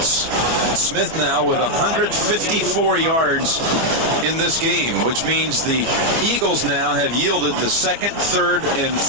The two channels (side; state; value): left; late; 25 ms